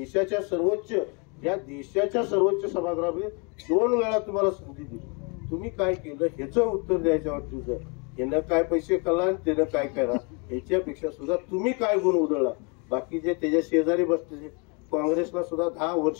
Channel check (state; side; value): quieter; right; 33.4 dB